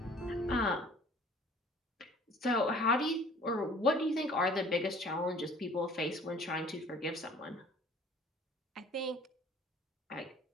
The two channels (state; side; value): normal; both; correlation 0.51